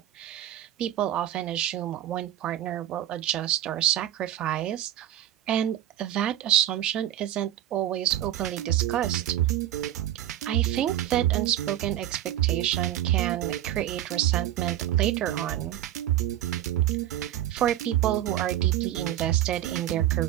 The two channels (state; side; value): quieter; left; 12.4 dB